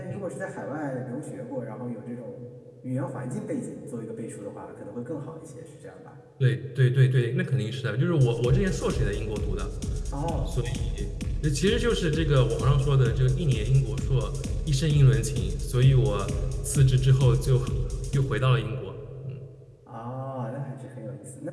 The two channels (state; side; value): identical; both; correlation 1.00